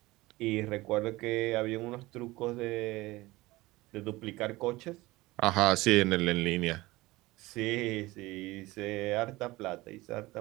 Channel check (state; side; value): quieter; left; 20.0 dB